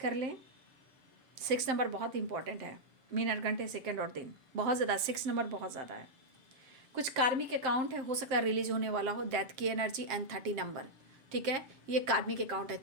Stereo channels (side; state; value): left; late; 7.6 ms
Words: लें। 6 नंबर बहुत इंपॉर्टेंट है, मिनट घंटे सेकंड और दिन बहुत ज़्यादा, 6 नंबर बहुत ज़्यादा है। कुछ कार्मिक अकाउंट है, हो सकता है रिलीज होने वाला हो, डेथ की एनर्जी एंड 30 नंबर, ठीक है, ये कार्मिक अकाउंट है।